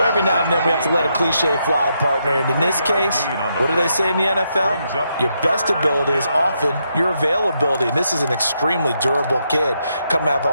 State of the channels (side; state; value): both; inverted; correlation -0.80